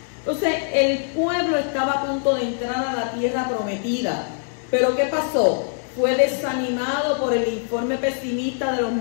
Entonces, el pueblo estaba a punto de entrar a la tierra prometida. Pero ¿qué pasó? Fue desanimado por el informe pesimista de los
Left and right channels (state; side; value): silent; right; digital silence